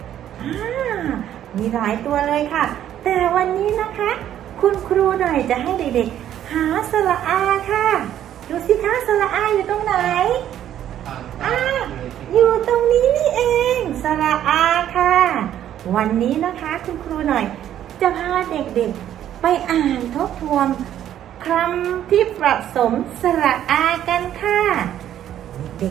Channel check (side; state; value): left; quieter; 11.1 dB